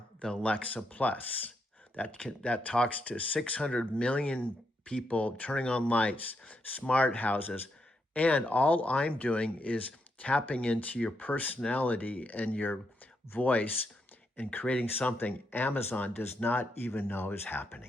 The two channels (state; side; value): normal; both; correlation 0.80